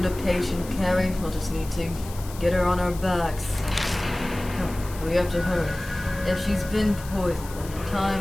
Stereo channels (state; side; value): noise; left; hiss, 16 dB below the sound